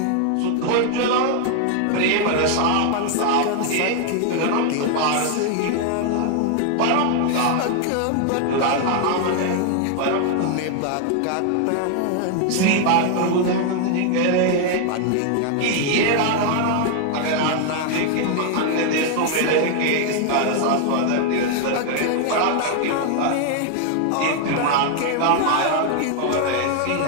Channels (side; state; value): both; different; correlation 0.00